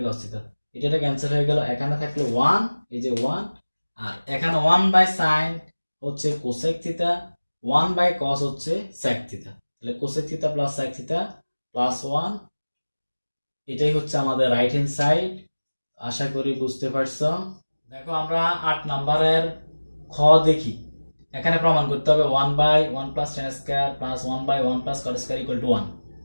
cos theta, এটা ক্যান্সেল হয়ে গেল, এখানে থাকলো 1, এই যে 1, আর এখানে 1 বাই সাইন হচ্ছে কোসেক থিটা, 1 বাই কস হচ্ছে সেক থিটা, তাহলে cosec theta plus sec theta plus 1, এটাই হচ্ছে আমাদের রাইট হ্যান্ড সাইড। আশা করি বুঝতে পারছো। দেখো আমরা 8 নাম্বারের খ দেখি, এখানে প্রমাণ করতে হবে 1/1 plus tan square plus 1/1 plus cot square equal to 1।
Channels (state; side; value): inverted; both; correlation -1.00